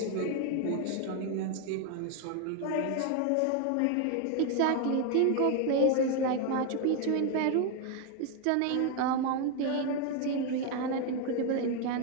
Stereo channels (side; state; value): both; different; correlation 0.01